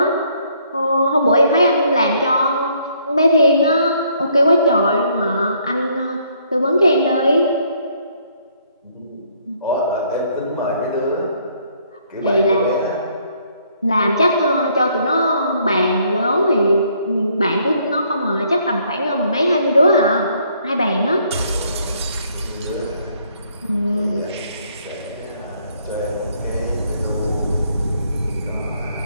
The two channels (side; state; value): both; inverted; correlation -0.67